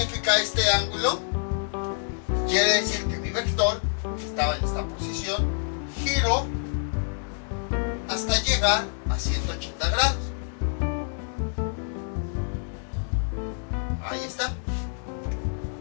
este ángulo? Quiere decir que mi vector, que estaba en esta posición, giró hasta llegar a 180 grados. Ahí está.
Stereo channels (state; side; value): silent; right; 60 dB below the other